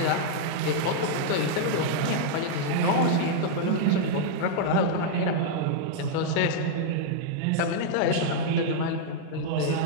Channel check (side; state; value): both; different; correlation -0.01